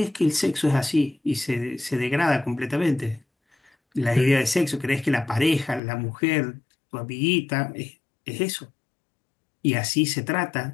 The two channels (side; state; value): right; drops out; at 5.8 s